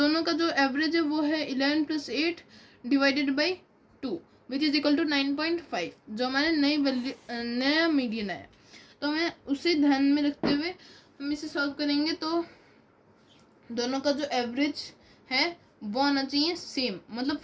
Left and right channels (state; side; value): identical; both; correlation 1.00